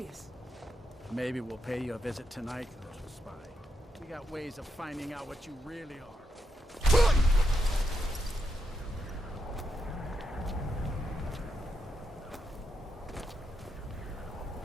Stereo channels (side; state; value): both; normal; correlation 0.82